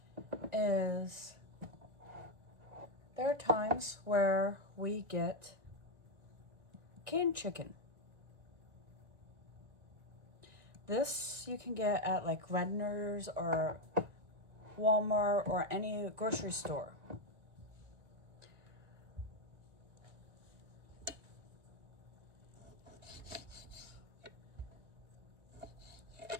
is there are times where we get canned chicken. This you can get at like Redner's or Walmart or any grocery store.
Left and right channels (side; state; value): left; late; 1.9 ms